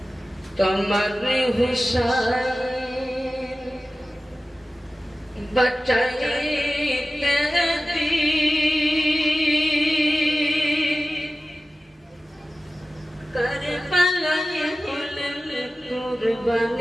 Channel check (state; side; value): normal; both; correlation 0.95